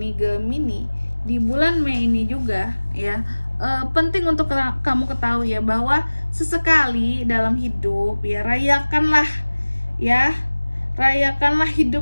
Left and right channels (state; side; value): inverted; both; correlation -1.00